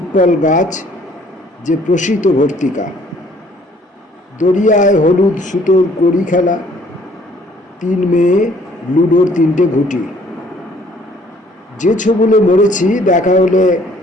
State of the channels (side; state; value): both; normal; correlation 0.60